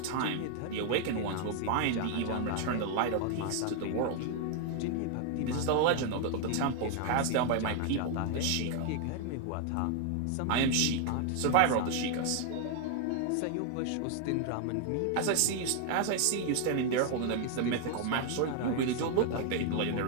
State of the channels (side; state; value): both; different; correlation 0.00